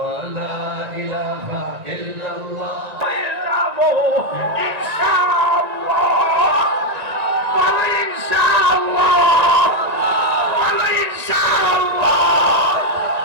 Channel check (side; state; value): left; late; 1.9 ms